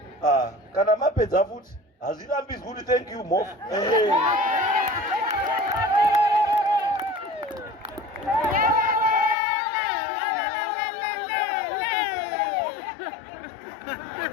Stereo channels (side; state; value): right; drops out; at 9.3 s